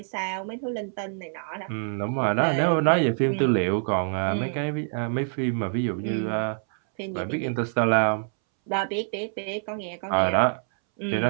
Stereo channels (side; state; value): left; silent; 61 dB below the other